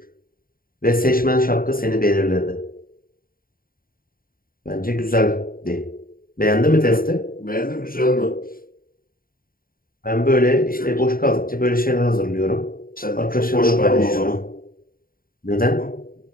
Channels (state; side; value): late; right; 0.42 ms